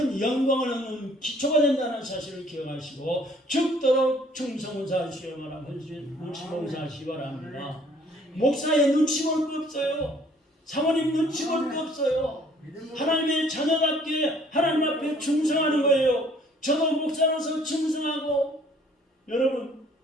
영광을 얻는 기초가 된다는 사실을 기억하시고 죽도록 충성사하시기 바랍니다. 헌신 봉사하시기 바랍니다. 목사의 눈치 볼 거 없어요. 사모님 눈치 볼 거 없어요. 하나님의 자녀답게 하나님 앞에 충성하는 거예요. 저도 목사로서 충성하고 여러분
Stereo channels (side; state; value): both; normal; correlation 0.59